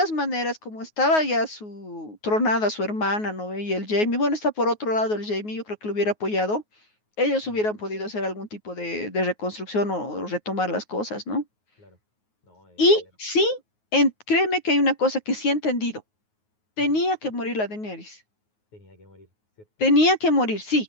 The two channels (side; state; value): right; late; 9.4 ms